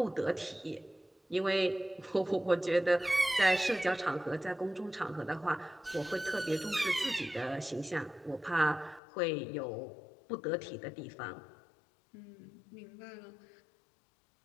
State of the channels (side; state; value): right; drops out; at 9.0 s